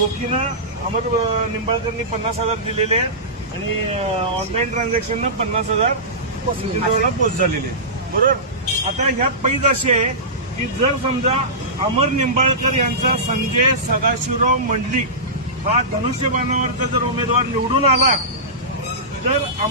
अमर निंबाळकरनी 50,000 दिलेले आहेत आणि ऑनलाईन ट्रान्झॅक्शननं 50,000 नितीन पोस्ट झालेले आहेत। बरोबर। आता ह्यात पैज अशी आहे की जर समजा अमर निंबाळकर यांचा संजय सदाशिवराव मंडलिक हा धनुष्यबाणावरचा जर उमेदवार निवडून आला तर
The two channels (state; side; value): normal; both; correlation -0.18